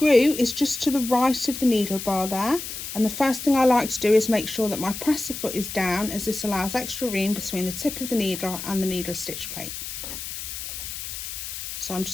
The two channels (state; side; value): noise; left; hiss, 8 dB below the sound